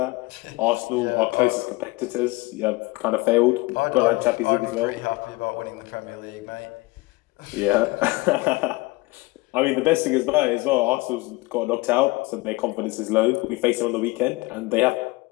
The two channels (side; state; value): right; quieter; 22.6 dB